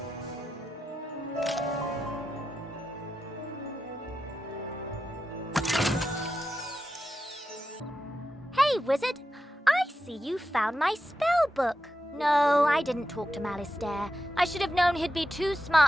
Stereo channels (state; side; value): normal; both; correlation 0.89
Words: Hey, Wizard. I see you found my spell book. No, I didn't talk to Malistaire. I should have known he'd be too